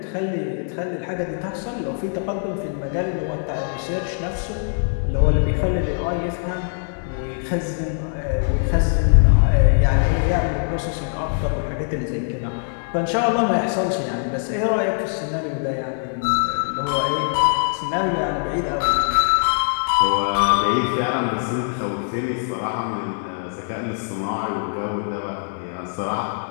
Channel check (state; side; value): silent; right; 64 dB below the other